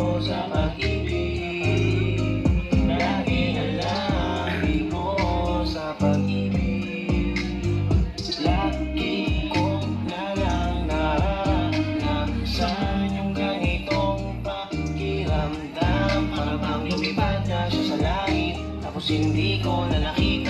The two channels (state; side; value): identical; both; correlation 1.00